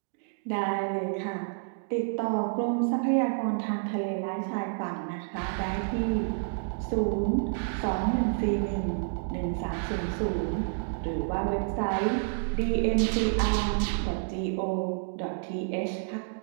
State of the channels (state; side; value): silent; left; digital silence